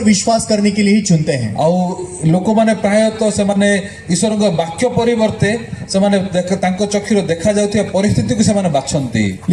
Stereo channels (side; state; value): both; identical; correlation 1.00